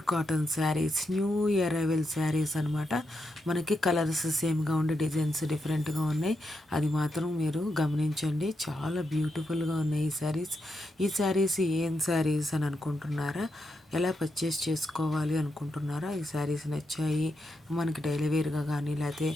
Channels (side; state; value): both; normal; correlation 0.84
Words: cotton saris, new year arrival saris అనమాట. మనకి కలర్స్ సేమ్గా ఉండి డిజైన్స్ డిఫరెంట్గా ఉన్నాయి, అది మాత్రం మీరు గమనించండి. చాలా బ్యూటిఫుల్గా ఉన్నాయి ఈ శారీస్ ఏం శారీస్ అని అనుకుంటున్నారా? ఎలా పర్చేస్ చేసుకోవాలి అనుకుంటున్నారా? ఈ శారీస్ నచ్చాయి మనకి డైలీ వేర్గా కానీ, లేకపోతే